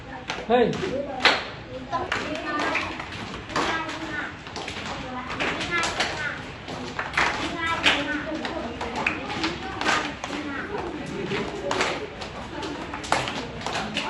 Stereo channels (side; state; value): both; identical; correlation 1.00